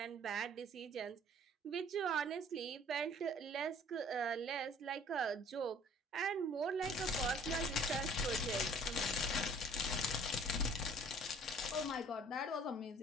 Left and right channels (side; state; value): both; normal; correlation 0.53